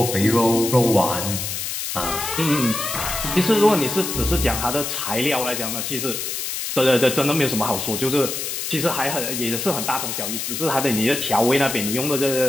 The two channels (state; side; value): noise; left; hiss, 4 dB below the sound